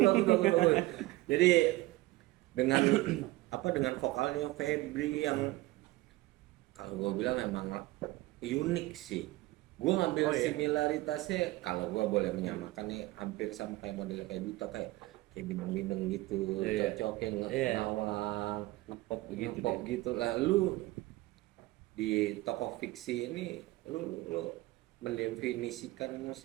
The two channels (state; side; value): quieter; left; 19.3 dB